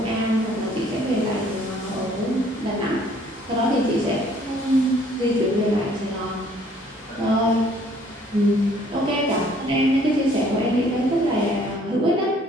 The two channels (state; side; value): normal; both; correlation 0.59